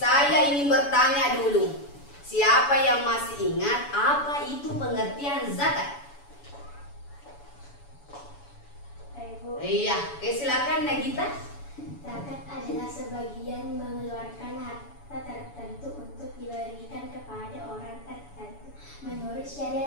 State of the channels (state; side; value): late; right; 7.0 ms